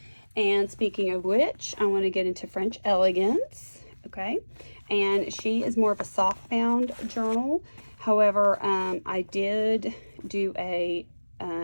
And speaking of which, I want to get into French Elegance, okay? And she is more of a soft bound journal. However, I did do a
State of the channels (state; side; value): inverted; both; correlation -1.00